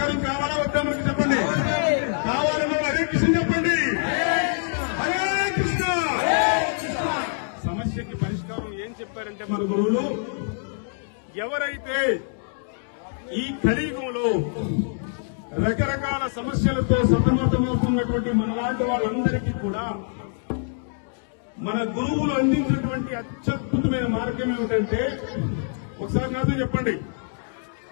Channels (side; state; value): right; silent; digital silence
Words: కావాలా వద్దా మనకి చెప్పండి. కావాలన్నా హరే కృష్ణ చెప్పండి. హరే కృష్ణ. సమస్యకి పరిష్కారం ఏం చెప్పారంటే మన గురువులు, ఎవరైతే ఈ కలియుగంలో రకరకాల సమస్యలతో సతమతమవుతున్నటువంటి మనలాంటి వాళ్ళందరికీ కూడా మన గురువులు అందించినటువంటి అత్యద్భుతమైన మార్గం ఏమిటంటే, ఒకసారి నాతో చెప్పండి,